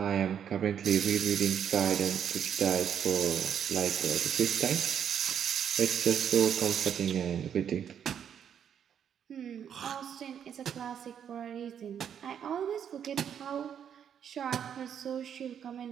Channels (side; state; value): left; quieter; 8.6 dB